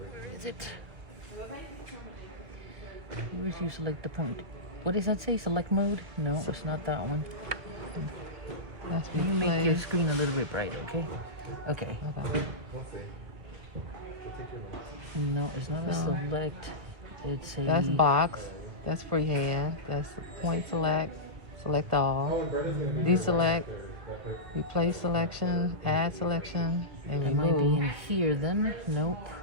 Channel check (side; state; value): left; late; 2.3 ms